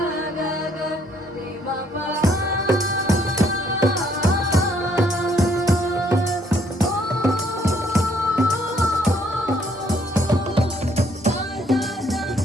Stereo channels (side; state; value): both; normal; correlation 0.66